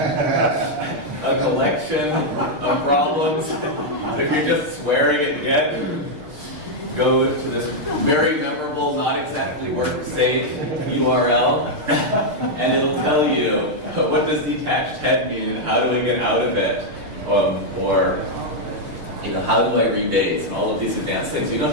a collection of problems. If you're just swearing at Git, go to this very memorable, not exactly work-safe URL, and it'll tell you what does detached head mean and how do I get out of it, or how do I rebase and all of these advanced things. You don't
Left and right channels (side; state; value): left; late; 6.7 ms